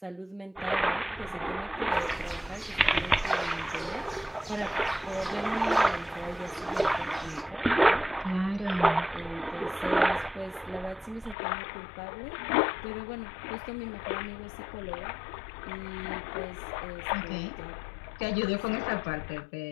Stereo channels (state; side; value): drops out; right; at 11.4 s